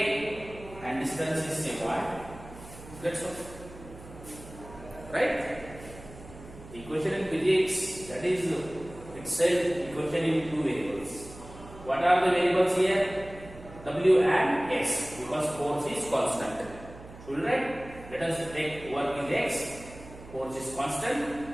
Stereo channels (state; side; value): noise; right; hum, 17 dB below the sound